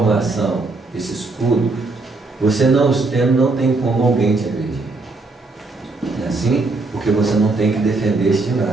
esse escudo, você não os tendo, não tem como alguém te agredir. É assim? Porque você não tem que defender-se de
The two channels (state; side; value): quieter; left; 3.4 dB